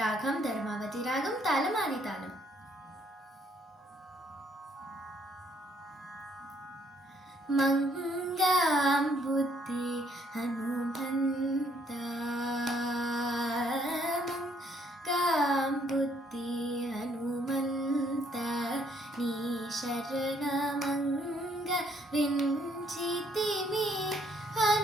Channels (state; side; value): normal; both; correlation 0.67